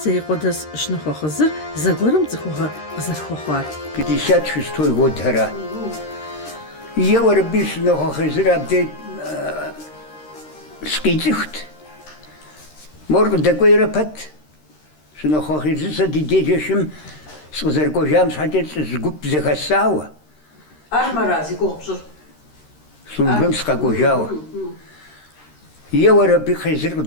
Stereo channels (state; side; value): late; right; 13 ms